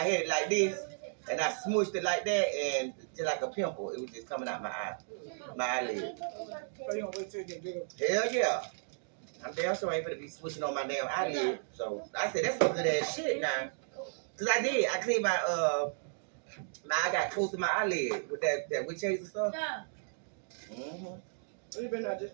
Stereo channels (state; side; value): silent; left; digital silence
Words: had it like this, and I smushed it like that, and just like a pimple, it was just coming out my eye, my eyelid. So you don't wait till you get bigger? Hell yeah. I'm damn sure I ain't gonna be switching on my damn eyelid. So I said, that's some good ass shit now. Cause I did. I cleaned my I got close to my eyelid with that witch hazel stuff. You been there